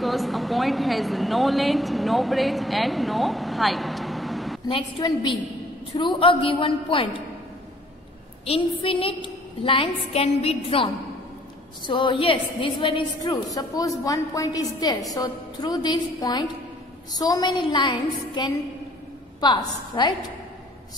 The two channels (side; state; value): both; normal; correlation 0.57